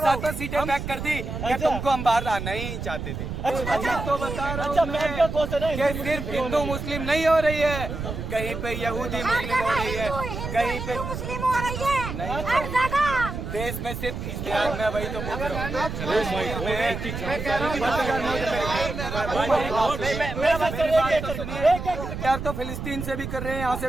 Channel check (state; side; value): noise; right; rumble, 6 dB below the sound